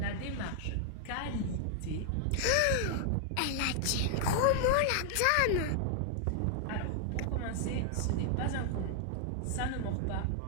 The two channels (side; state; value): both; different; correlation 0.00